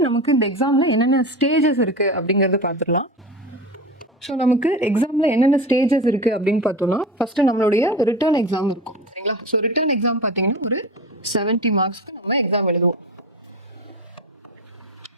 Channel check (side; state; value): both; normal; correlation 0.27